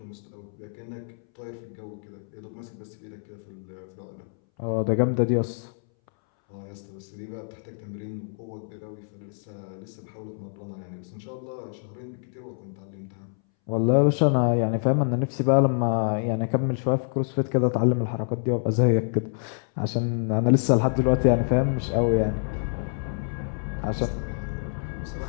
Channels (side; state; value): right; silent; 60 dB below the other